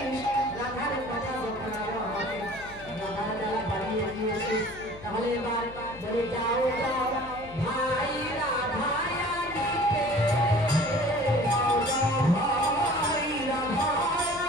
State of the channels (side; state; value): left; noise; hum, 19 dB below the sound